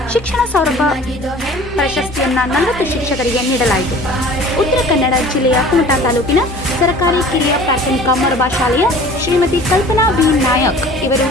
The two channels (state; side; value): normal; both; correlation 0.45